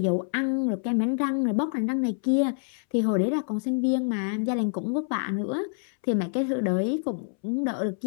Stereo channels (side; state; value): right; silent; 60 dB below the other